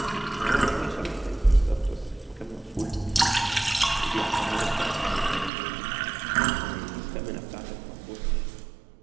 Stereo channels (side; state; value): left; drops out; at 5.5 s